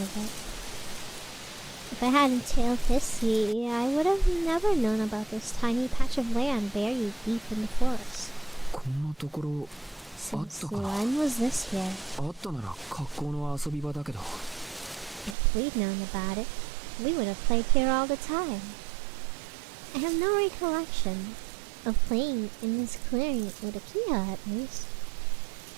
of it. If I hadn't tailed Hissy, I would have never known about this tiny patch of land buried deep in the forest. こんなところあっ Since たかな。 when was this here? あったなら格好の遊び場だけど。 If we'd known about it, we would have played here all the time. I have no recollection of playing in this clearing with a Kia at least.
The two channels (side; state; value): left; drops out; at 15.4 s